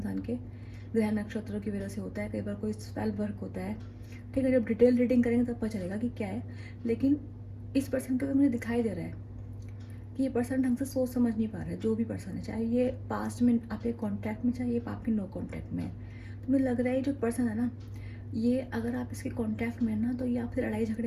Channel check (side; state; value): both; identical; correlation 1.00